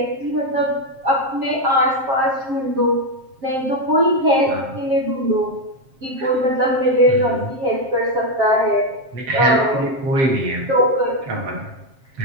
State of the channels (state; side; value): late; left; 7.5 ms